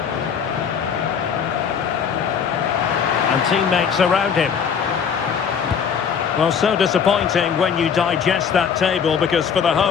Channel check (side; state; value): right; quieter; 7.1 dB